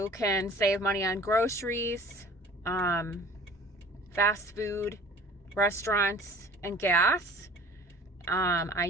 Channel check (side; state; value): both; normal; correlation 0.47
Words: can save money on groceries, fast food, restaurants, and gas. I